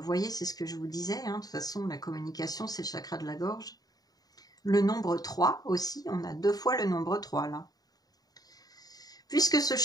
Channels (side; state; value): right; late; 0.18 ms